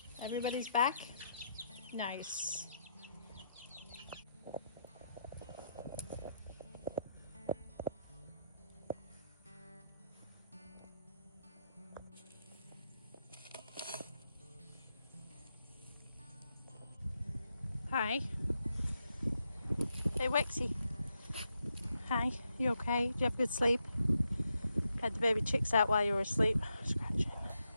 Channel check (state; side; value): inverted; both; correlation -0.82